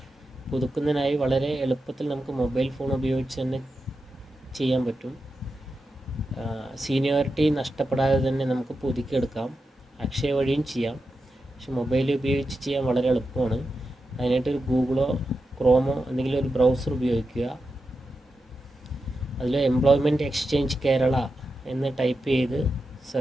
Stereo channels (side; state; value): both; normal; correlation 0.89